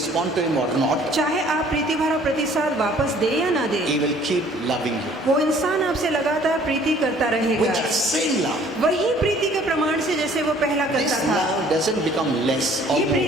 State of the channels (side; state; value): both; normal; correlation 0.56